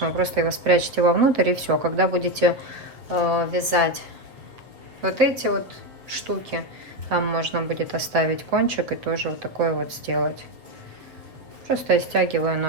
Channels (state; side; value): late; left; 7.5 ms